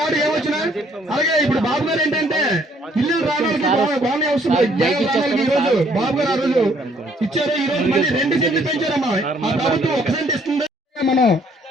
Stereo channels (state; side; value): normal; both; correlation 0.64